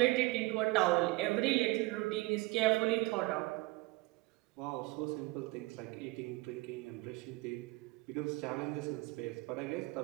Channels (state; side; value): quieter; left; 22.3 dB